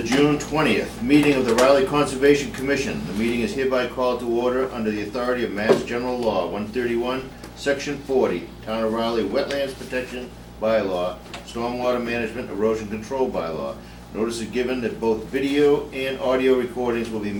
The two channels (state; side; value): identical; both; correlation 1.00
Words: June 20th meeting of the Riley Conservation Commission. The meeting is hereby called to order under the authority of Mass General Law 131, Section 40, Town of Riley Wetlands Protection Bylaw, Stormwater Management Erosion Control Bylaw. Notice is given that both video and audio recordings will be